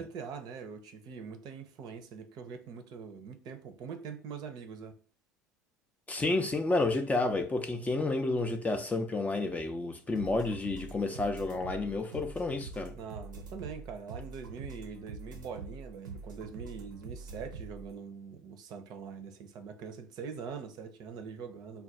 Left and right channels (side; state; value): both; normal; correlation 0.69